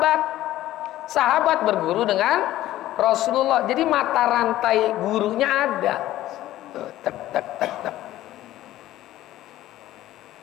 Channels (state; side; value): quieter; right; 14.6 dB